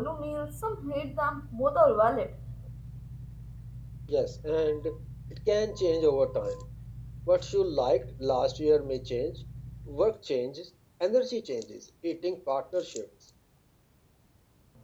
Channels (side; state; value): both; identical; correlation 1.00